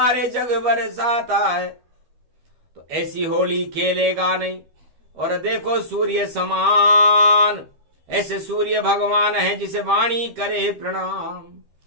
जग बरसाता है। तो ऐसी होली खेलेगा नहीं। और देखो सूर्य समान, ऐसे सूर्य भगवान है जिसे वाणी करे प्रणाम।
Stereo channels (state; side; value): late; left; 13 ms